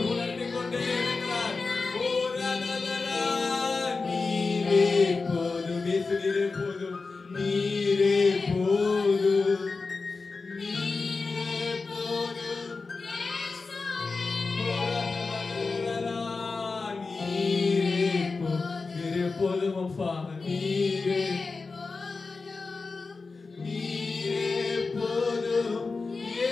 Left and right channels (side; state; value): right; quieter; 4.1 dB